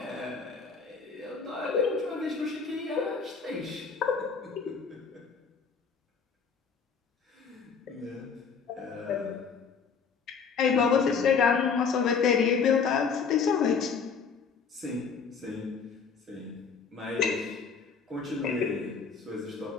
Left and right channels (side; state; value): right; quieter; 5.7 dB